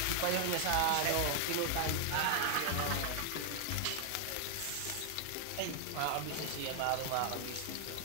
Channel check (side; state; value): both; different; correlation 0.00